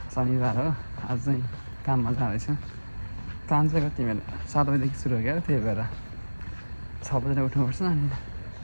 शनिबार हो। आज चाहिँ काममा जाँदैछु। काम चाहिँ कति मेरो 7 बजीदेखि सुरु हो क्या त्यही भएर 6 बजी उठ्नुपर्छ। अनि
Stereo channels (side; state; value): both; inverted; correlation -1.00